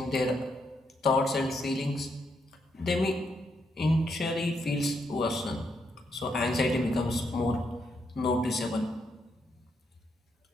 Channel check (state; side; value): normal; both; correlation 0.78